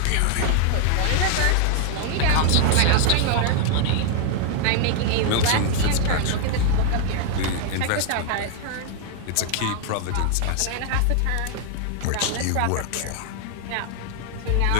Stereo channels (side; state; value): both; different; correlation 0.00